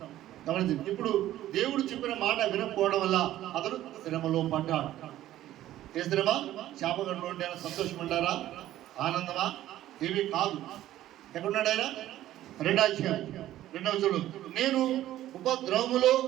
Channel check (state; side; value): quieter; left; 13.7 dB